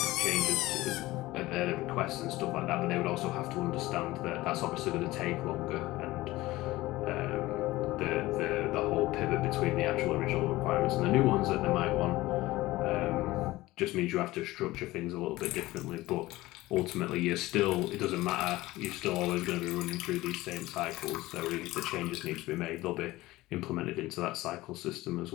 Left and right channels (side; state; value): right; quieter; 18.4 dB